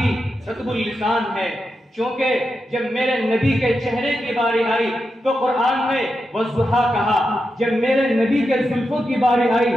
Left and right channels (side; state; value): both; normal; correlation 0.88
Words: رطب اللسان ہے، چونکہ جب میرے نبی کے چہرے کی باری آئی تو قرآن میں والضحیٰ کہا، جب میرے نبی کے زلفوں کی باری آئی